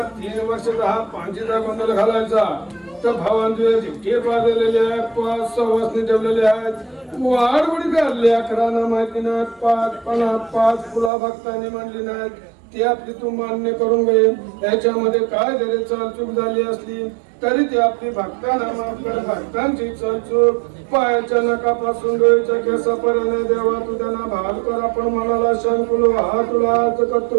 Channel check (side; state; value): left; drops out; at 11.1 s